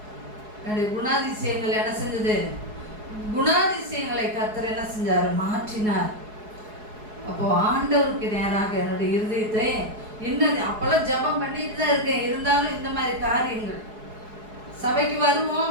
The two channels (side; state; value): left; late; 4.7 ms